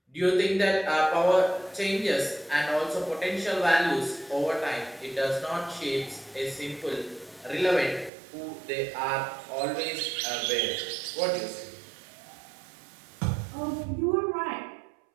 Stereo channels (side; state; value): left; drops out; at 8.1 s